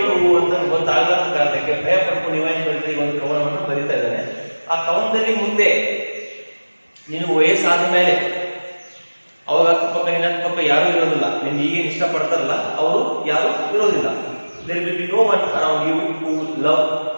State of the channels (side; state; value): both; inverted; correlation -1.00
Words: ಅಂತ ಗೊತ್ತಾಗಲಾರದ ಕಾರಣಕ್ಕೆ ಭಯ ಪಡ್ಕೊಂಡು ಇವಾಗ ಬರೀತಾ ಒಂದು ಕವನವನ್ನು ಬರೀತಾ ಇದ್ದಾನೆ. ಆ ಕವನದಲ್ಲಿ ಮುಂದೆ ನೀನು ವಯಸ್ಸಾದ ಮೇಲೆ ಅವಾಗ ಅಕ್ಕಪಕ್ಕ ನಿನ್ನ ಅಕ್ಕಪಕ್ಕ ಯಾರು ಇರೋದಿಲ್ಲ, ನಿನ್ಗೆ ಈಗೇನು ಇಷ್ಟಪಡ್ತಾರಲ್ಲ ಅವರು ಯಾರು ಇರೋದಿಲ್ಲ. There will be no one around you who love